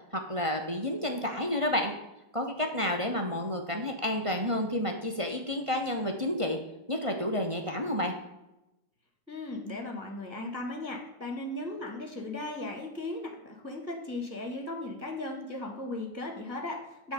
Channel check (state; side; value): late; left; 1.5 ms